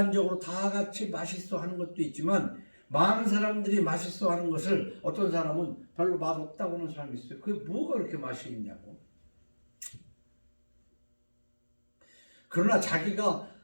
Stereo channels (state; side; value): inverted; both; correlation -1.00